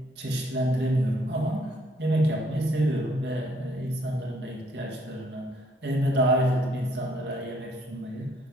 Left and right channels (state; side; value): normal; both; correlation 0.66